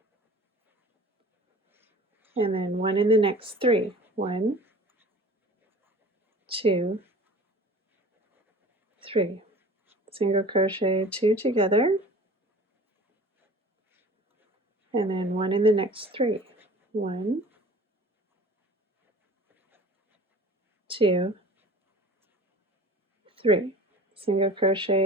and then 1 in the next 3. 1, 2, 3. Single crochet 2 together, and then 1 in the next 3. 1, 2, 3. Single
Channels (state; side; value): normal; both; correlation 0.43